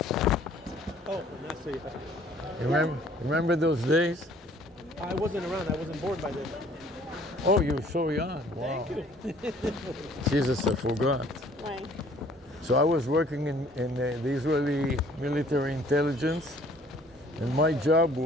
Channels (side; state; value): both; normal; correlation 0.57